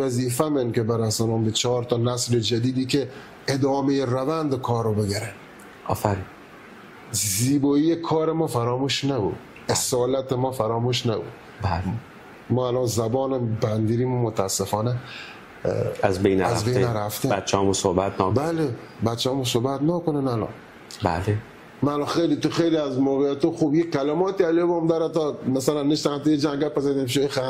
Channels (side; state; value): both; identical; correlation 1.00